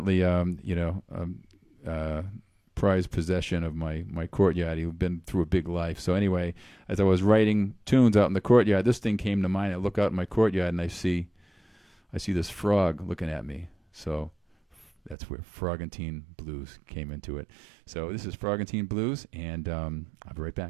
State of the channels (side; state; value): left; drops out; at 15.2 s